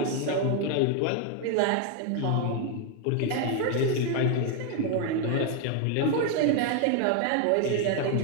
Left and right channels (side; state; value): both; different; correlation 0.01